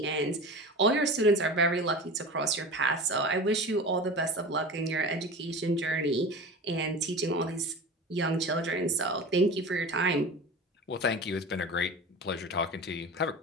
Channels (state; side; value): normal; both; correlation 0.32